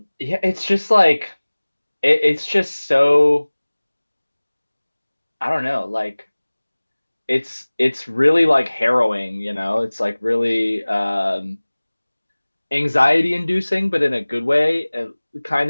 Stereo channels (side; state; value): both; inverted; correlation -1.00